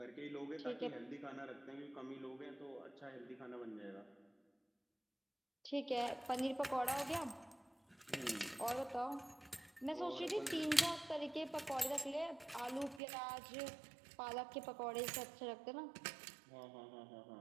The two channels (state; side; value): drops out; left; at 13.0 s